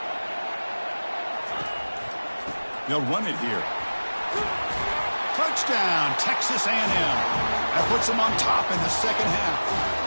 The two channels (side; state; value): both; inverted; correlation -1.00